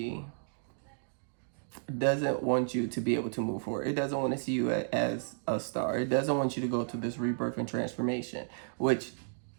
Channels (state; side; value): silent; left; digital silence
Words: doesn't want you to be able to move forward. It doesn't want to see you as a star. It doesn't want you to go through this rebirth and transformation, which,